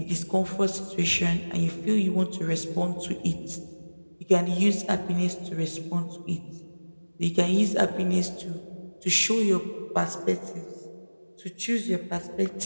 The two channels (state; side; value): inverted; both; correlation -1.00